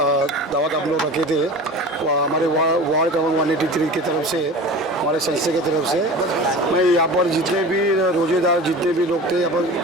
दावत आप लोग रखे थे, हमारे वार्ड क्रमांक 183 की तरफ से, हमारे संस्था की तरफ से। मैं यहाँ पर जितने भी रोज़ेदार जितने भी लोग थे, यहाँ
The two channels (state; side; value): normal; both; correlation 0.36